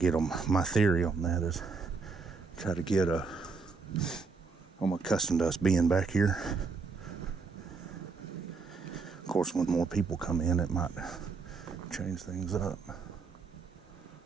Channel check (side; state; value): left; quieter; 4.7 dB